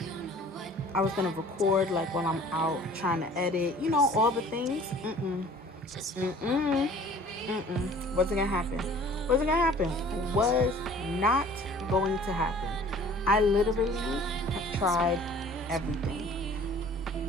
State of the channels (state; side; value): normal; both; correlation 0.49